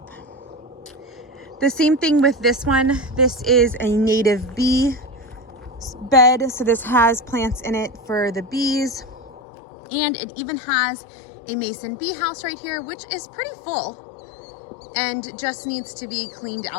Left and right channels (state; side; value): drops out; right; at 9.4 s